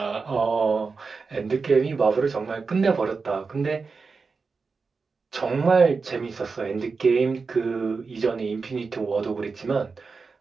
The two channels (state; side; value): quieter; left; 4.6 dB